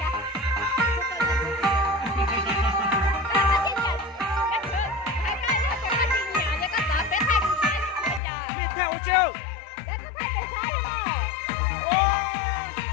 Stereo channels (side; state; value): right; drops out; at 8.2 s